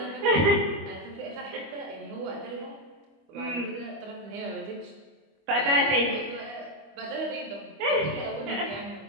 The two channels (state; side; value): late; left; 25 ms